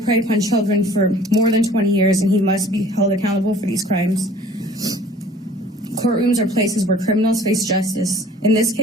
upon children for more than 20 years, and he must be held accountable for these crimes. Courtrooms are places where criminals face justice. In this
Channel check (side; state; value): both; normal; correlation 0.51